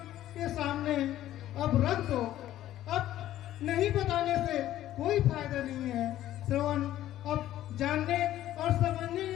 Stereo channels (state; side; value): quieter; right; 13.2 dB